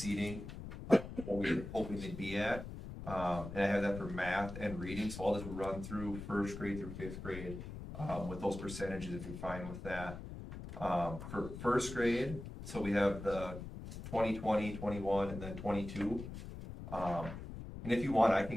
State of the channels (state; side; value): noise; left; rumble, 10 dB below the sound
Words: what we were hoping they'd be at. And I have that for math and reading, so I'll just run through first grade through fifth grade, with those percentages if you're fine with that. For first grade, so we have the 2020, 21, and then 22. And if you want, I